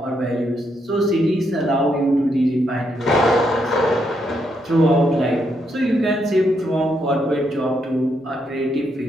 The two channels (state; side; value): normal; both; correlation 0.78